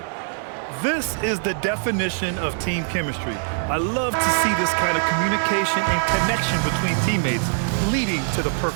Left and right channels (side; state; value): left; silent; 62 dB below the other